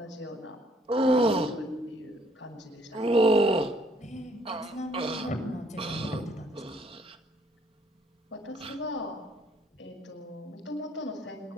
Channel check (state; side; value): normal; both; correlation 0.65